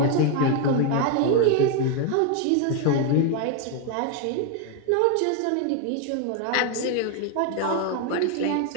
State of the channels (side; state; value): both; different; correlation 0.01